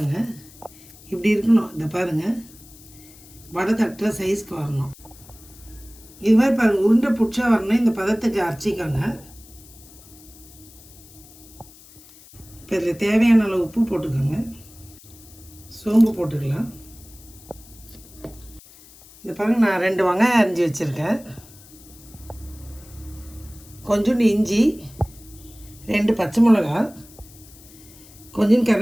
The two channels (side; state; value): left; noise; hiss, 22 dB below the sound